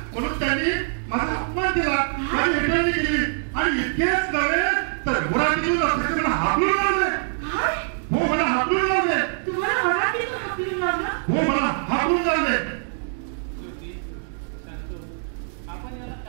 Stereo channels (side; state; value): left; silent; digital silence